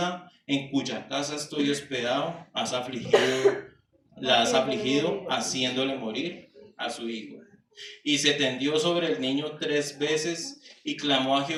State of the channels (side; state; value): both; identical; correlation 1.00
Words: en cuya casa estoy hospedado la has afligido, haciéndole morir a su hijo. Y se tendió sobre el niño 3 veces y clamó a